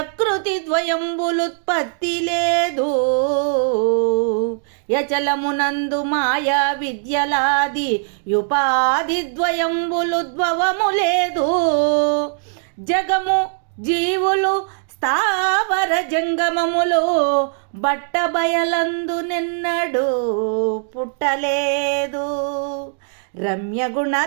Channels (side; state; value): left; silent; digital silence